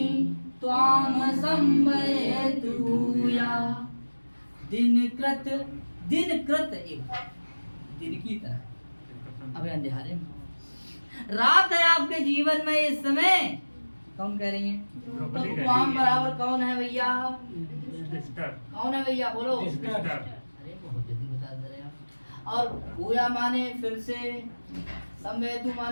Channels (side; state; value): both; inverted; correlation -1.00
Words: त्वां संभयतु या। दिनकृत, दिनकृत एक दिन की तरह, अबे अंधेरे में रात है आपके जीवन में इस समय। कौन कह रही हैं? तो त्वां बराबर कौन है भैया? कौन है भैया? बोलो। अरे बहुत जल्दी बता दे रहे आप। और भूया माने फिर से, संवेदु